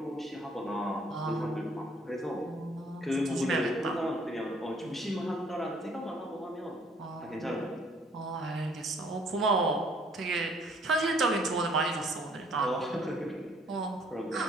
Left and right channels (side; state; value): both; normal; correlation 0.61